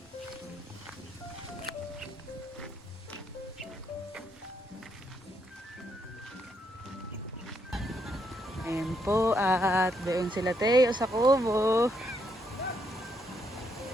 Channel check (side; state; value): both; normal; correlation 0.76